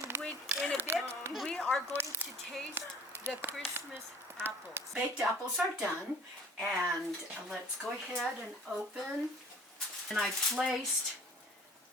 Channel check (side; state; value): both; normal; correlation 0.49